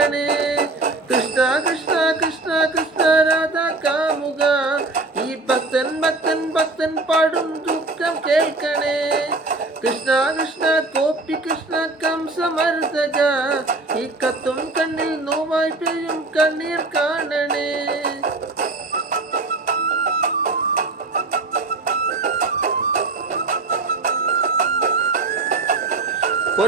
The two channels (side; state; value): left; quieter; 3.2 dB